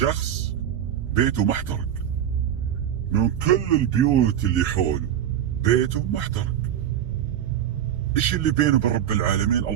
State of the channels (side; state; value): left; quieter; 10.2 dB